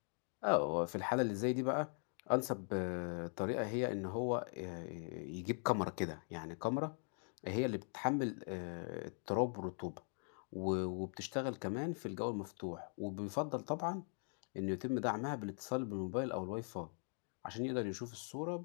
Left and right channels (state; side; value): silent; right; 50 dB below the other